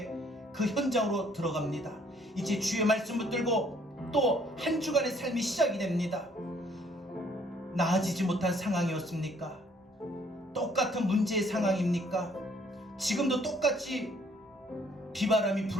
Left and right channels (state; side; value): normal; both; correlation 0.63